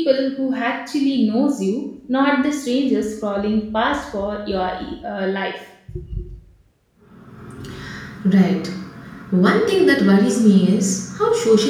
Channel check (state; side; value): identical; both; correlation 1.00